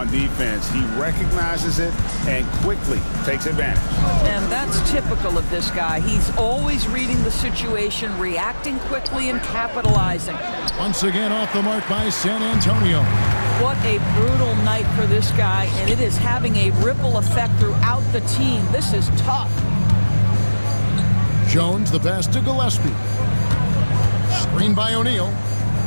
defense. He recognizes it and quickly takes advantage. And that's typical of this guy. He's always reading the situation, reacting quickly, and capitalizing. Once again off the mark by San Antonio. What a brutal night for this guy, and it is having a ripple effect throughout the team. This is tough. Jones, the pass to Gillespie. Screen by O'Neal.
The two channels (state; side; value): inverted; both; correlation -1.00